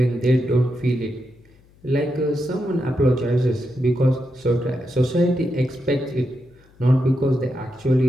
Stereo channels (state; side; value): noise; left; hum, 29 dB below the sound